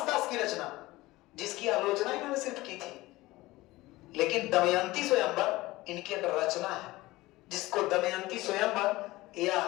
दास की रचना, जिसकी आलोचना इन्होंने सिर्फ की थी। लेकिन दमयंती स्वयंवर इनकी एक रचना है, जिसको दमयंती स्वयंवर या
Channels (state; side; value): quieter; right; 19.1 dB